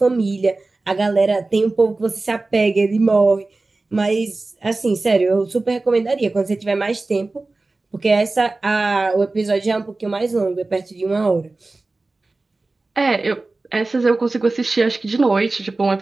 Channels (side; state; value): left; quieter; 3.3 dB